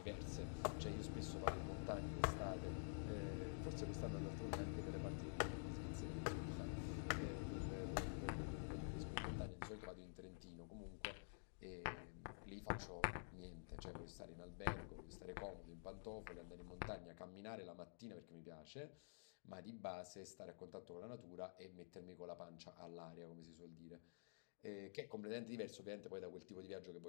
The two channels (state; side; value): silent; right; digital silence